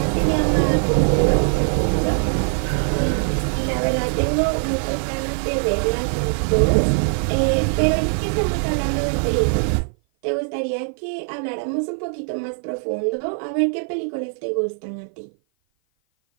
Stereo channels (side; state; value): left; silent; 55 dB below the other